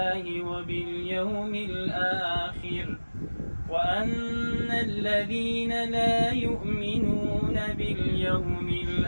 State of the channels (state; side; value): inverted; both; correlation -1.00